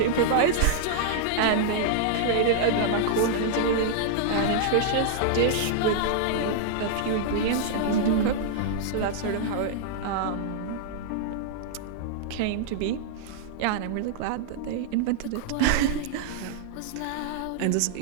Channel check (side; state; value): both; different; correlation -0.01